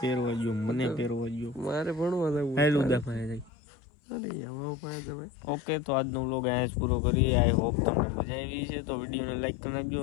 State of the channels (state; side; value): drops out; right; at 3.5 s